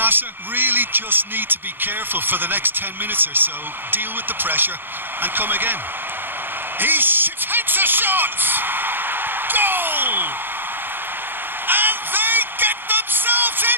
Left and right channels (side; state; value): left; late; 0.099 ms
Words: really just need to be careful for the next 10 minutes or so, deal with the pressure and come again. He takes a shot! Goal! And they get themselves